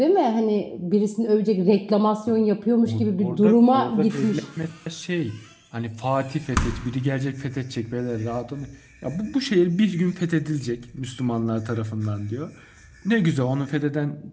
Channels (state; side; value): identical; both; correlation 1.00